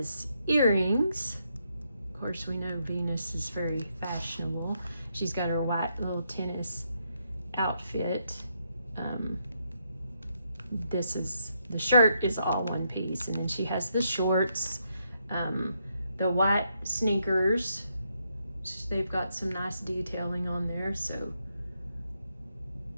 earrings. Of course, we know Venus is very fashionable. She's got her white little tennis outfit. The shirt is all one piece, and then she has the shorts, the white sneakers. They've got some nice detailing on there, so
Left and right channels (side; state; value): both; inverted; correlation -0.78